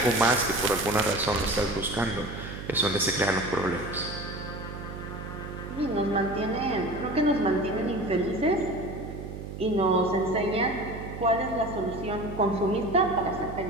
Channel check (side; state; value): right; noise; hum, 9 dB below the sound